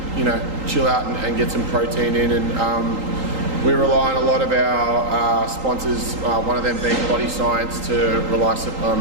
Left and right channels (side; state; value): left; late; 3.8 ms